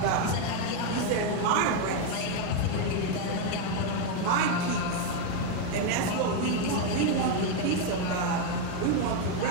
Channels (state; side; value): different; both; correlation 0.02